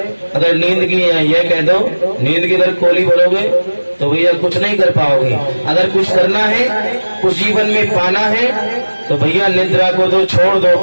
अगर नींद की यह कह दो, नींद की अगर कोली भरोगे तो भैया कुछ नहीं कर पाओगे। अगर कुछ करना है, कुछ जीवन में पाना है, तो भैया निद्रा को तो छोड़ दो,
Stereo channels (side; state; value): both; inverted; correlation -1.00